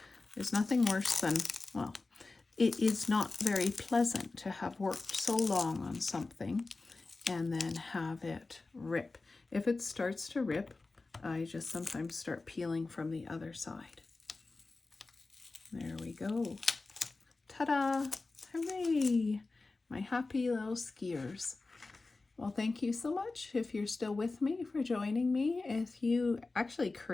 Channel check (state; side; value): quieter; right; 3.6 dB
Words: There's nothing worse than, well, it is not very pleasant to have worked so long on something and then have it rip. If it starts to rip, I just sometimes start peeling from the other side. There we go. Ta-da! Hooray! My happy little skiers. Well, thank you so much if you're still with me, for joining me. If you actually